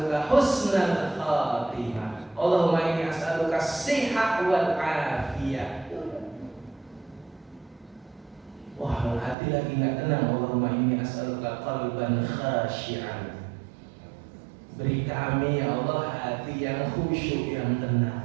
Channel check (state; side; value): drops out; left; at 9.3 s